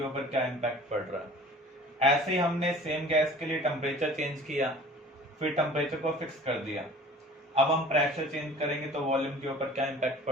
ऊपर क्या इम्पैक्ट पड़ रहा है। ऐसे ही हमने सेम गैस के लिए टेम्परेचर चेंज किया, फिर टेम्परेचर को फिक्स कर दिया। अब हम प्रेशर चेंज करेंगे तो वॉल्यूम के ऊपर क्या इम्पैक्ट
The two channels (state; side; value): normal; both; correlation 0.45